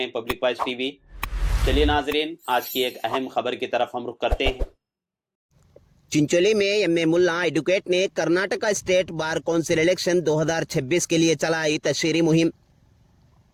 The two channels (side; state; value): both; identical; correlation 1.00